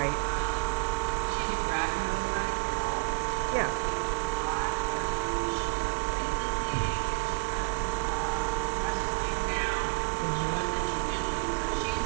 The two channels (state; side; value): silent; left; 58 dB below the other